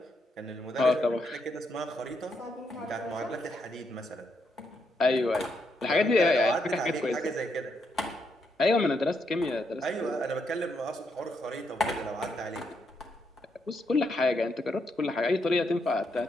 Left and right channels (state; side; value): normal; both; correlation 0.78